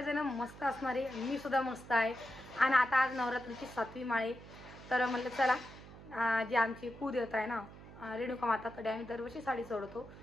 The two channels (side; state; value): right; noise; hum, 17 dB below the sound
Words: मस्त असणारे, मी सुद्धा मस्त आहे. आणि आता आज नवरात्रीची 7वी माळे, तर म्हणलं चला जी आमची कुलदेवता आहे ना रेणुका माता, तर आम्ही दरवर्षी साडी चढवतो,